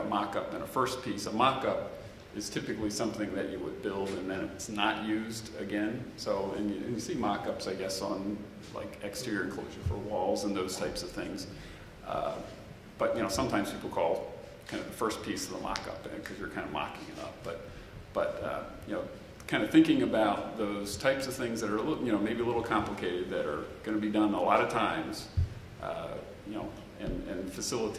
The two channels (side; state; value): both; identical; correlation 1.00